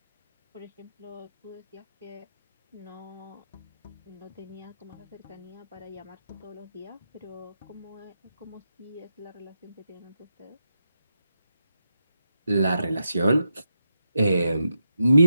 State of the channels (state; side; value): inverted; both; correlation -0.85